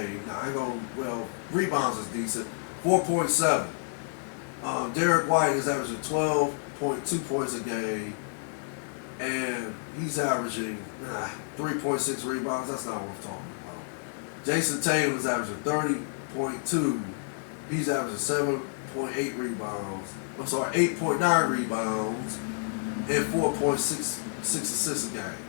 Now, rebounds is decent. 4.7. Derek White is averaging 12.2 points a game, and he's averaging 3.6 rebounds. That's not worth talking about. Jason Tatum is averaging 30.2. He's averaging 7.8 rebounds. 8.9 rebounds and 4.6 assists a game.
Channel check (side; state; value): right; silent; digital silence